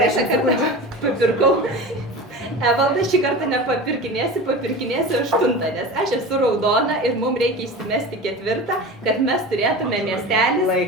kartą papirkau. Evaldas šį kartą nepapirkinėsi, papirkinėsi 8, nes aš esu raudona ir mums reikia įsimesti 4, kad mes turėtume miestelį.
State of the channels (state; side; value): normal; both; correlation 0.32